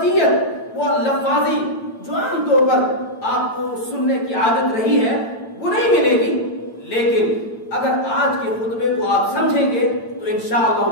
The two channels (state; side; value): late; right; 8.9 ms